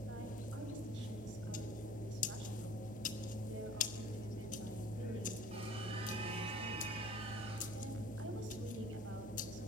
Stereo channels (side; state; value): right; noise; hum, 9 dB below the sound